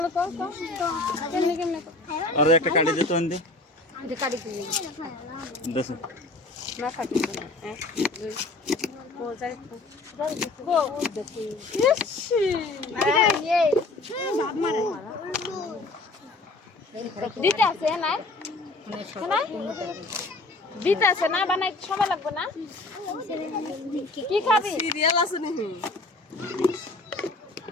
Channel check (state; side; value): quieter; right; 3.1 dB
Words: কত কেমনে কেমনে আর একটা কাটি দে তো এনে যে কাটি দিই দেখ না কাটি দিই এক দুই ও যাই ও দেখি ইসি এই বাপ মারে দিতে আছে না না দিতে আছে না বানাই সময় লাগবে না কি খাবি সিরিয়াল আছে নাকি